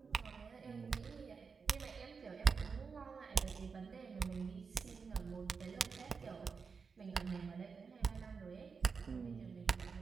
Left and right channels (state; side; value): quieter; left; 5.3 dB